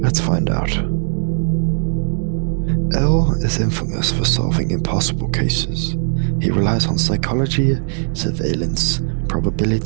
Let's find out. L is infamous for solving impossible cases. He relies on psychology, surveillance,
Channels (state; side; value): silent; left; 57 dB below the other